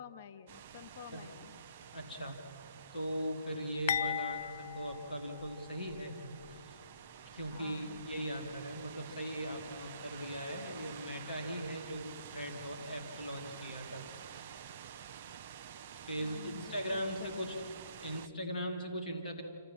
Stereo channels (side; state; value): both; inverted; correlation -0.69